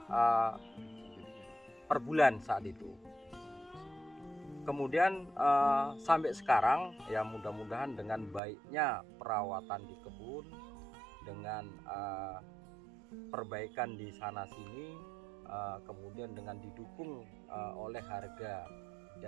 per bulan saat itu. Kemudian sampai sekarang, ya, mudah-mudahan dengan baiknya perawatan di kebun, dengan perbaikan di sana sini, kemudian dengan didukung oleh harga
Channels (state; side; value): drops out; left; at 8.4 s